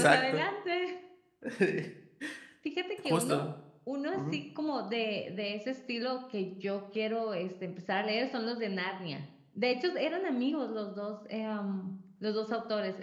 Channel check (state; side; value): identical; both; correlation 1.00